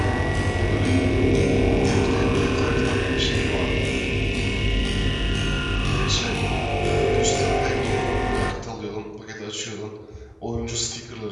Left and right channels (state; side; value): identical; both; correlation 1.00